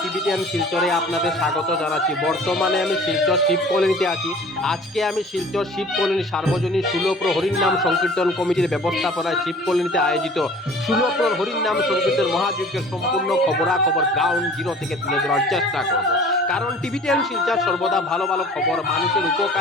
টিভিটিএন শিলচরে আপনাদের স্বাগত জানাচ্ছি। বর্তমানে আমি শিলচর শিব কলোনিতে আছি। আজকে আমি শিলচর শিব কলোনি সার্বজনীন ষোলপ্রহর হরিনাম সংকীর্তন কমিটির ব্যবস্থাপনায় শিব কলোনিতে আয়োজিত ষোলপ্রহর হরিনাম সংকীর্তন মহাযজ্ঞের সম্পূর্ণ খবরাখবর গ্রাউন্ড জিরো থেকে তুলে ধরার চেষ্টা করব। কারণ টিভিটিএন শিলচর সর্বদা ভালো ভালো খবর, মানুষের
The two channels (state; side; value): normal; both; correlation 0.47